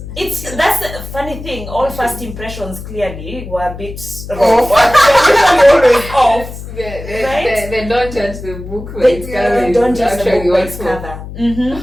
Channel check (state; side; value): noise; left; hum, 11 dB below the sound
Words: That's the funny thing. All first impressions clearly were a bit wrong. Always off. They don't judge the book when it's They don't judge the book by its cover.